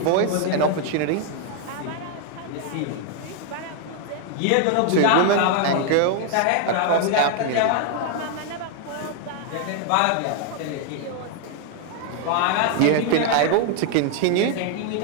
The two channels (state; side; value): different; both; correlation 0.00